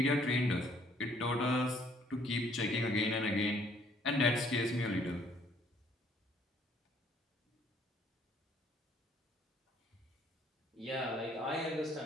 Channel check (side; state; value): both; normal; correlation 0.63